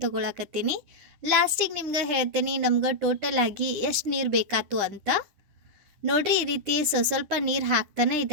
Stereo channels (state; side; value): late; left; 10 ms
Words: ತಗೊಳಕತ್ತೀನಿ. ಲಾಸ್ಟಿಗೆ ನಿಮ್ಗೆ ಹೇಳ್ತೀನಿ ನಮ್ಗೆ ಟೋಟಲ್ ಆಗಿ ಎಷ್ಟು ನೀರು ಬೇಕಾತು ಅಂತ. ನೋಡ್ರಿ ಈ ರೀತಿ ಸ್ವಲ್ಪ ನೀರು ಹಾಕ್ತಾನೆ